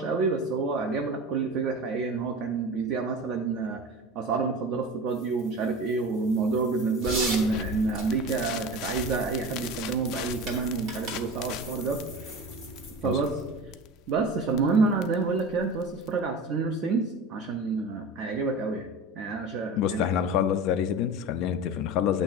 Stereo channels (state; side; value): normal; both; correlation 0.32